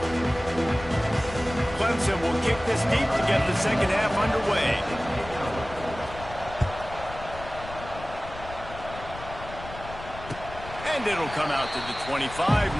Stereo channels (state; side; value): noise; left; rumble, 13 dB below the sound